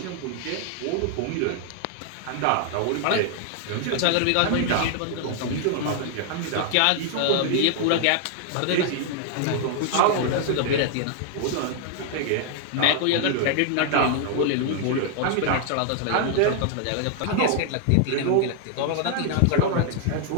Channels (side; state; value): both; different; correlation 0.00